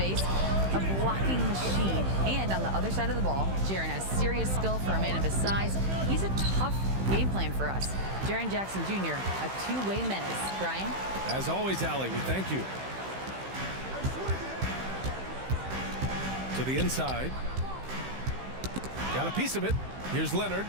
a blocking machine. And on the other side of the ball, Jaren has serious skill for a man of his size. He's a tough game plan for us. Jaren Jackson Jr., a two-way menace. Brian? As always, Allie, we thank you. To the inside. Got a piece of it. Here's Leonard.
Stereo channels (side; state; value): left; late; 15 ms